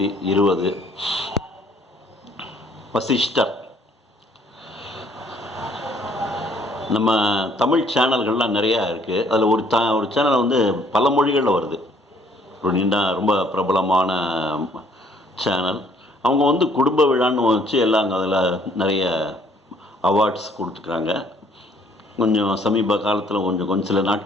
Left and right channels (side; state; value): both; normal; correlation 0.61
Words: வசிஷ்டர். நம்ம தமிழ் சேனல்கள்லாம் நிறையா இருக்குது. அதில் ஒரு சேனல் வந்து பல மொழிகளில் வருது. ஒரு ரொம்ப பிரபலமான சேனல். அவங்க வந்து குடும்ப விழான்னு வச்சு எல்லாம் அதில் நிறைய அவார்ட்ஸ் கொடுத்துருக்குறாங்க. கொஞ்சம் சமீப காலத்தில் கொஞ்சம் சில